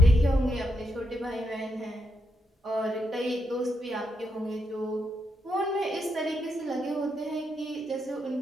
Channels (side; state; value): both; normal; correlation 0.81